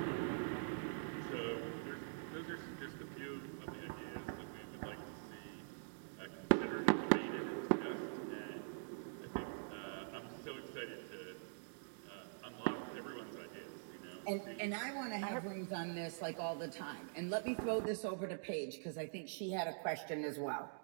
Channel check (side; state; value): left; silent; digital silence